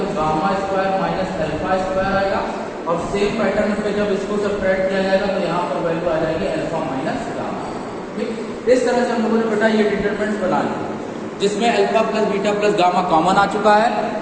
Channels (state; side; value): identical; both; correlation 1.00